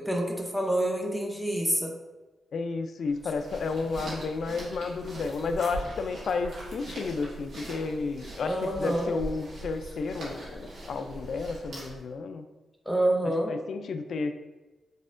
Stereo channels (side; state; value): both; normal; correlation 0.86